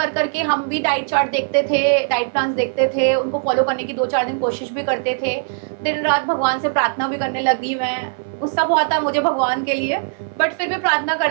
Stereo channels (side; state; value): left; silent; 66 dB below the other